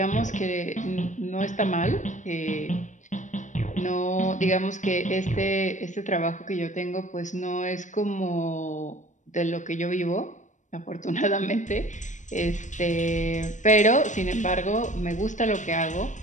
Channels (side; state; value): right; late; 0.36 ms